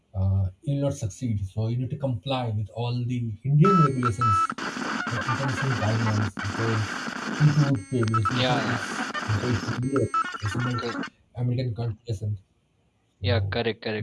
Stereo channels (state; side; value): identical; both; correlation 1.00